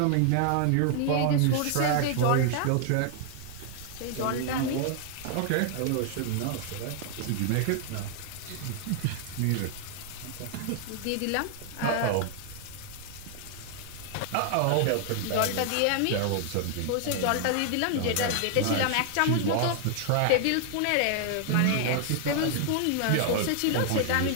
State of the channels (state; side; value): different; both; correlation 0.00